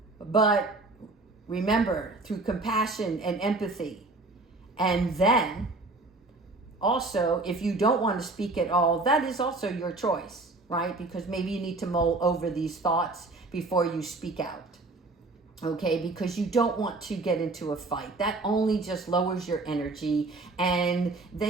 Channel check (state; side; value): quieter; left; 3.2 dB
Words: but remember, through compassion and empathy. And then, also, if you don't want to speak at all, that is also your choice. Right? Because maybe you need to mull over these thoughts before you speak out. Okay? Because you don't want to get into a fight. That only just lowers your energy, and